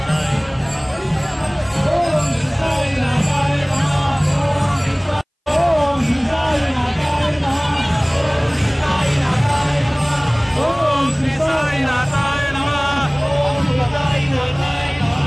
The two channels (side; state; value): both; identical; correlation 1.00